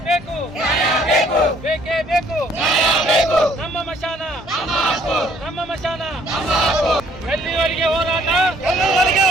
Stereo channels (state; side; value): normal; both; correlation 0.62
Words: ಬೇಕು ನ್ಯಾಯ ಬೇಕು ಬೇಕೇ ಬೇಕು ನ್ಯಾಯ ಬೇಕು ನಮ್ಮ ಮಶಾನ ನಮ್ಮ ಮಶಾನ ಎಲ್ಲಿವರೆಗೆ ಹೋರಾಟ ಎಲ್ಲಿವರೆಗೆ